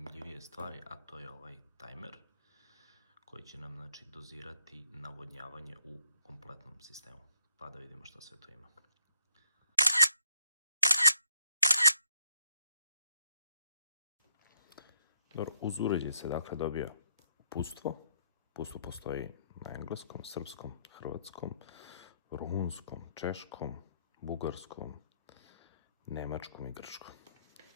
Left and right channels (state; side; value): inverted; both; correlation -0.72